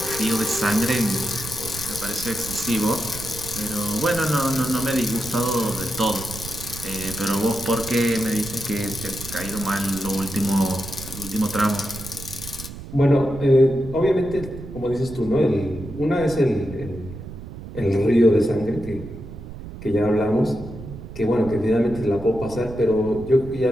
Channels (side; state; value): right; noise; rumble, 12 dB below the sound